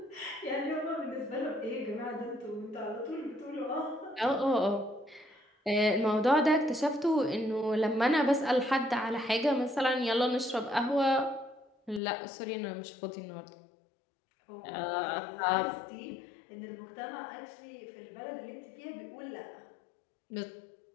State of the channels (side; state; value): right; drops out; at 12.0 s